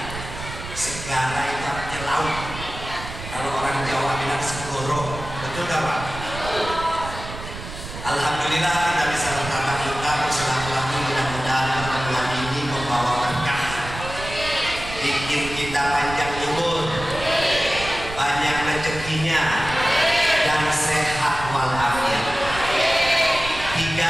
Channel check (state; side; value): noise; right; rumble, 10 dB below the sound